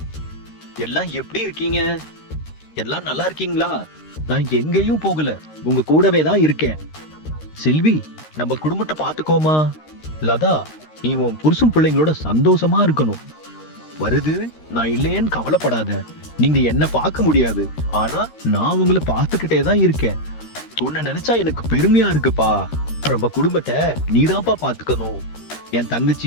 எல்லாம் எப்படி இருக்கீங்க? எல்லாம் நல்லா இருக்கீங்களா? நான் எங்கேயும் போகல, உங்க கூடவே தான் இருக்கேன். செல்வி, நம்ம குடும்பத்தை பாத்துக்கோமா. லதா, நீ உன் புருஷன் பிள்ளைங்களோட சந்தோஷமா இருக்கணும். வருது, நான் இல்லையேன்னு கவலைப்படாத. நீங்க என்ன பார்க்க முடியாது, ஆனா நான் உங்களை பார்த்துக்கிட்டே தான் இருக்கேன். உன்னை நினைச்சா எனக்கு பெருமையா இருக்குப்பா. நம்ம குடும்பத்தை நீதான்ப்பா பாத்துக்கணும். என்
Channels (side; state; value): right; late; 13 ms